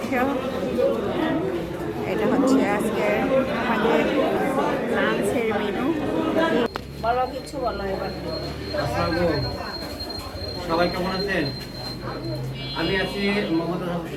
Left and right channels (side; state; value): both; identical; correlation 1.00